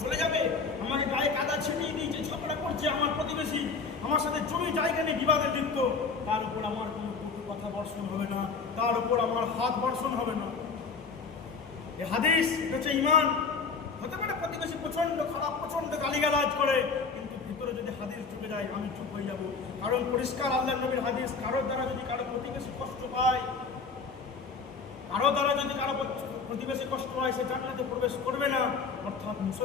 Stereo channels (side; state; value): right; quieter; 4.8 dB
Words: চলে যাবে, আমাকে গায়ে কাদা ছিটিয়ে দিয়েছে, ঝগড়া করছে আমার প্রতিবেশী, আমার সাথে জমি জায়গা নিয়ে বিবাদে লিপ্ত, তার উপর আমার কোনো কটু কথা বর্ষণ হবে না, তার উপর আমার হাত বর্ষণ হবে না। এ হাদিস, এটা হচ্ছে ঈমান। হতে পারে প্রতিবেশী প্রচন্ড খারাপ, প্রচন্ড গালিগালাজ করে, কিন্তু ভিতরে যদি হাদিস ঢুকে যায় আমি চুপ হয়ে যাব। কারণ পরিষ্কার আল্লাহর নবীর হাদিস, কারোর দ্বারা যদি কারো প্রতিবেশী কষ্ট পায়, কারো দ্বারা যদি কারো প্রতিবেশী কষ্ট হয়, সে জান্নাতে প্রবেশ করবে না। অর্থাৎ